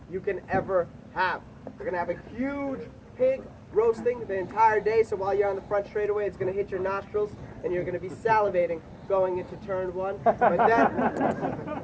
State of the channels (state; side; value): identical; both; correlation 1.00